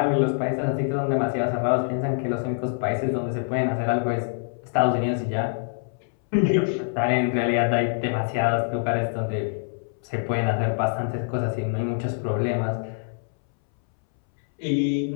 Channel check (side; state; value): right; silent; 62 dB below the other